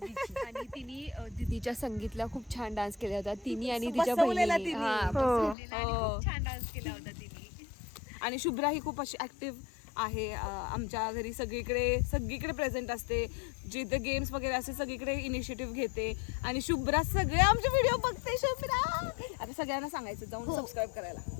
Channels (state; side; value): drops out; right; at 5.6 s